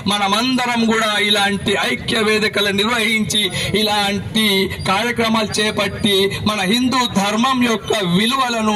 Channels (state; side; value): identical; both; correlation 1.00